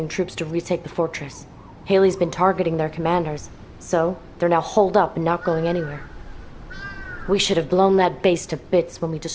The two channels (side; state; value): both; identical; correlation 1.00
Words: troops to retake the fortress. Haley's been targeting their commanders, so they're now holed up and not going anywhere. We should have blown that base to bits when we